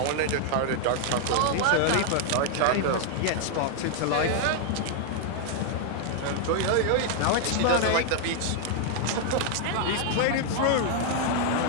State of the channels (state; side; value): different; both; correlation 0.00